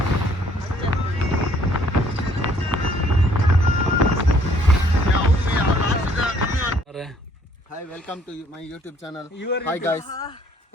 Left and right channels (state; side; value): normal; both; correlation 0.62